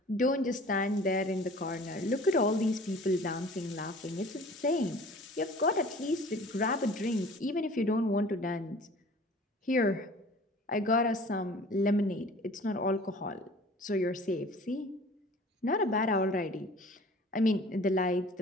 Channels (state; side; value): normal; both; correlation 0.46